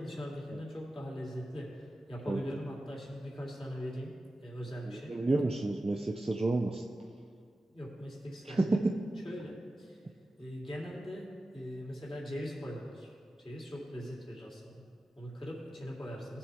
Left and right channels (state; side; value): normal; both; correlation 0.93